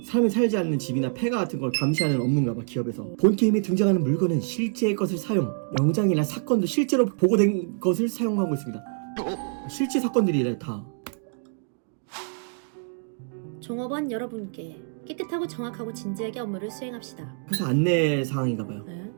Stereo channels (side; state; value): left; silent; digital silence